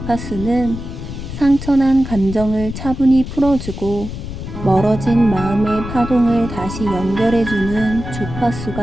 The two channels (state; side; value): noise; left; rumble, 9 dB below the sound